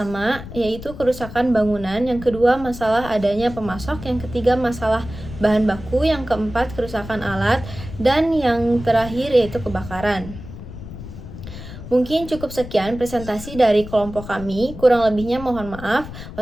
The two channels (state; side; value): noise; left; rumble, 12 dB below the sound